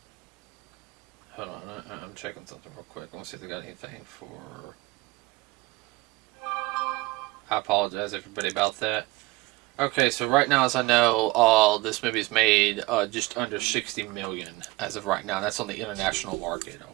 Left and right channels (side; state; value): left; quieter; 20.8 dB